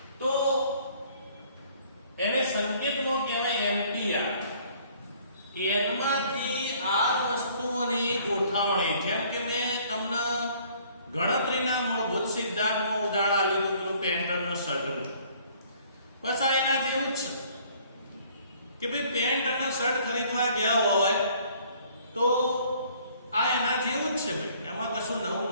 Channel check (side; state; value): both; inverted; correlation -0.58